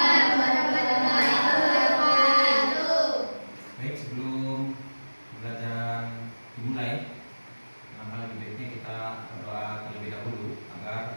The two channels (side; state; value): both; inverted; correlation -1.00